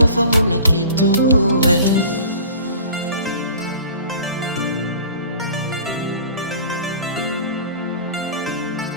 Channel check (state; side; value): inverted; both; correlation -0.43